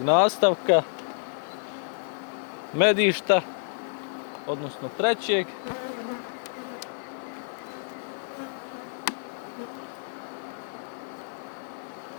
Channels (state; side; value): silent; right; digital silence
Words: nastavka medišta, odnosno trećeg.